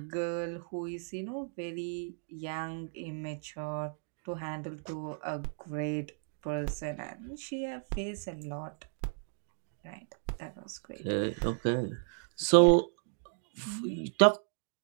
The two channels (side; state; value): left; silent; digital silence